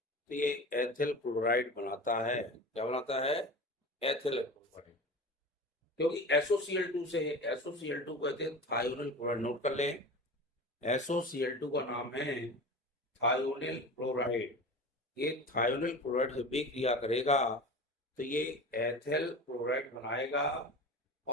ये एथिल क्लोराइड बनाता है। क्या बनाता है? Ethyl chloride. क्योंकि SOCl2 से है, SOCl2 कहते हैं थायोनिल क्लोराइड। नोट कर लें, SOCl2 का नाम है थायोनिल क्लोराइड। ये थायोनिल क्लोराइड जब भी क्रिया करेगा तो ये एथिल क्लोराइड बनाएगा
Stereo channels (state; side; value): normal; both; correlation 0.33